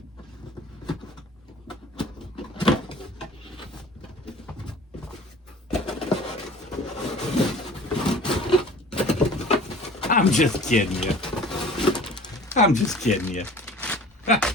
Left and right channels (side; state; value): both; normal; correlation 0.45